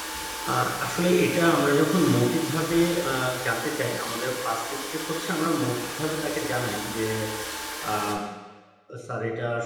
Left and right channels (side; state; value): both; identical; correlation 1.00